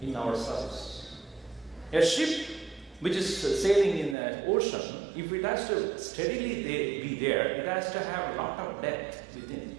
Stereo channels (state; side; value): drops out; left; at 4.2 s